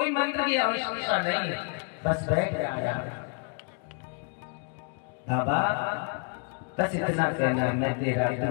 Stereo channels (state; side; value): quieter; right; 36.1 dB